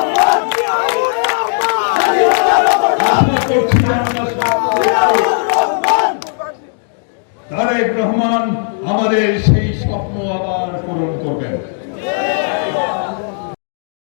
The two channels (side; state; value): right; silent; digital silence